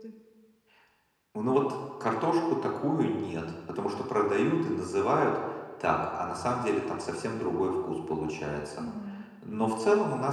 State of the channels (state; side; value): identical; both; correlation 1.00